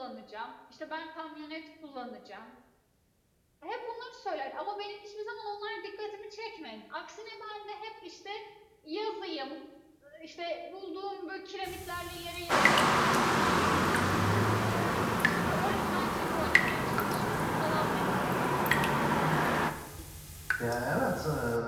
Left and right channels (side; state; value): both; identical; correlation 1.00